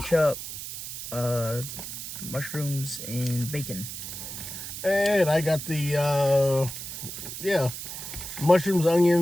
mushrooms, and bacon. And I got the, mushrooms,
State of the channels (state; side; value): noise; right; hiss, 8 dB below the sound